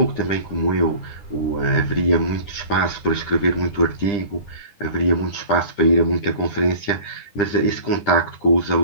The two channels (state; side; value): late; right; 10 ms